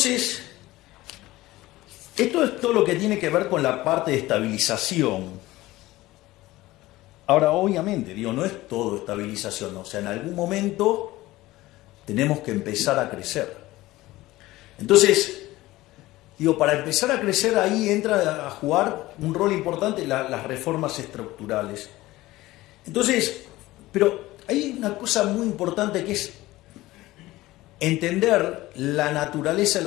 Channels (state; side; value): quieter; right; 17.9 dB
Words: Esto es todo lo que tiene que ver con la parte de estabilización. Ahora, obviamente, digo, no es todo estabilización, o sea, en algún momento tenemos que empezar a crecer. Entonces, digo, para empezar a crecer ahí entra a jugar un rol importante las reformas estructurales. Entonces, pero hay una cosa muy importante que es entender la naturaleza de